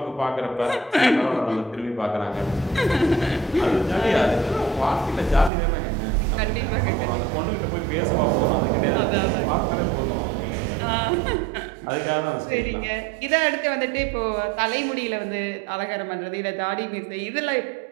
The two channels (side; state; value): left; drops out; at 5.5 s